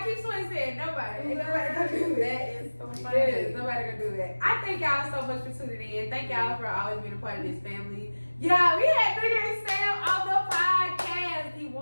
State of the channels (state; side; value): inverted; both; correlation -1.00